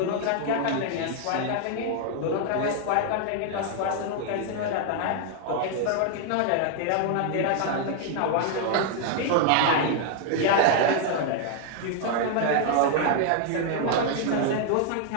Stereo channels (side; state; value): both; different; correlation 0.00